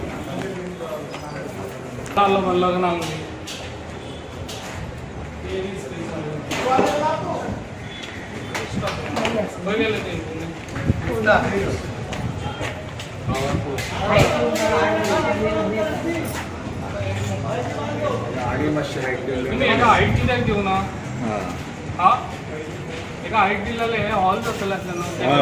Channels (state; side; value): identical; both; correlation 1.00